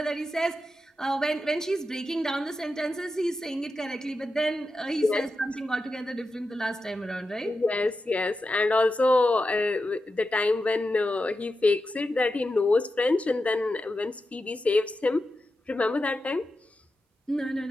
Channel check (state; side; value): normal; both; correlation 0.90